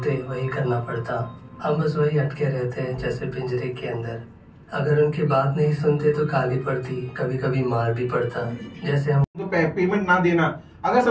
वही करना पड़ता। हम बस वही अटके रहते हैं जैसे पिंजरे के अंदर। अगर उनकी बात नहीं सुनते तो गाली पड़ती, कभी कभी मार भी पड़ता। जैसे हम पेमेंट ना देना, अगर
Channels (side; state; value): both; identical; correlation 1.00